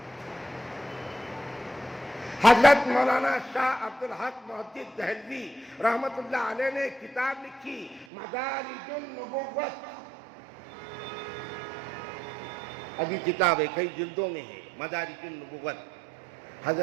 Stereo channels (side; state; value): left; drops out; at 8.1 s